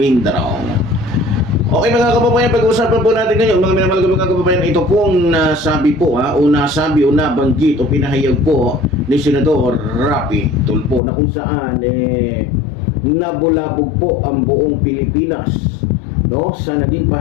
Okay mga kababayan, pag-uusapan po natin ngayon, mga minamahal ko mga kababayan, ito pong nasabi po o nabanggit o pinahayag po ni Senador Rapi Tulfo na kung saan nabulabog po ang buong Pilipinas, no, sa naging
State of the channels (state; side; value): drops out; right; at 11.0 s